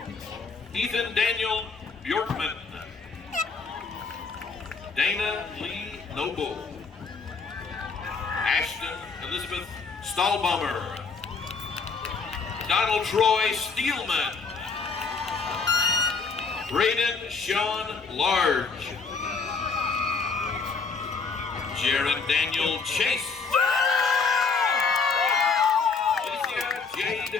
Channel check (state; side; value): quieter; right; 4.8 dB